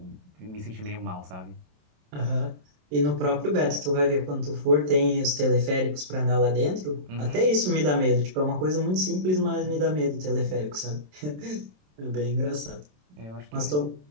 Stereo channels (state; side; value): late; left; 27 ms